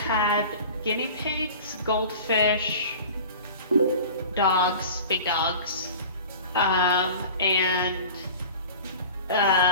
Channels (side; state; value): both; inverted; correlation -0.39